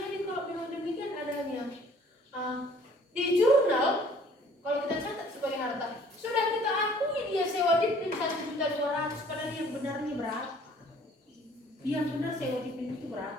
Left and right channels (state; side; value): normal; both; correlation 0.55